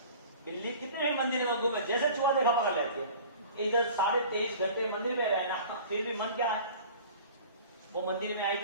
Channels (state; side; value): inverted; both; correlation -0.43